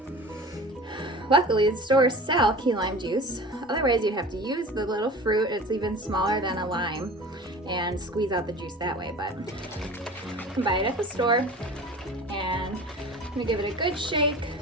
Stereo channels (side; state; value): both; normal; correlation 0.38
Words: Luckily the stores sell key lime juice, otherwise you'd have to use the little fruit. It's even smaller than a lime and squeeze out the juice that way, but you can buy it at the store. And I'm going to give it a good shake